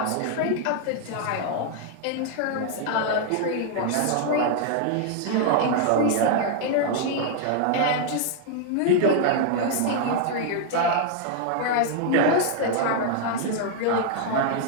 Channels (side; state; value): both; different; correlation 0.00